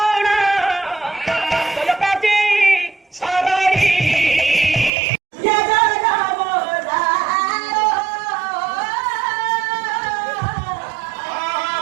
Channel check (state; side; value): drops out; left; at 4.9 s